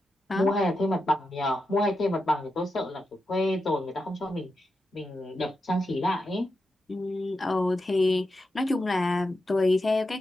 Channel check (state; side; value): normal; both; correlation 0.88